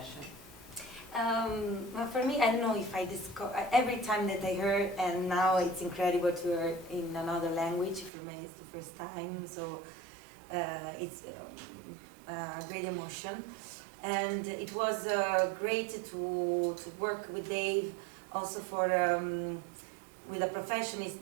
Well, for me, I don't know if I discover every time that I heard, and now it's incredible to hear in another language. For me, it's the first time, so it's a great emotion, and it was great to work with Dave. Also for with a professionist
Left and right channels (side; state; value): left; drops out; at 8.1 s